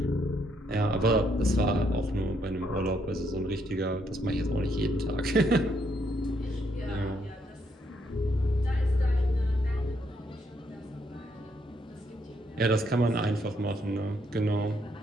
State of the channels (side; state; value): both; normal; correlation 0.74